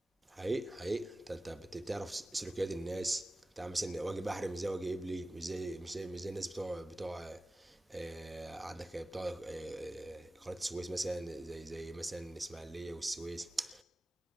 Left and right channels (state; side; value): normal; both; correlation 0.96